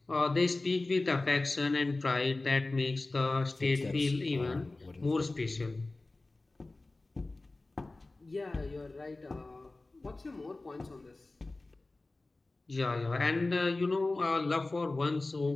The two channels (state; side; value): quieter; right; 3.1 dB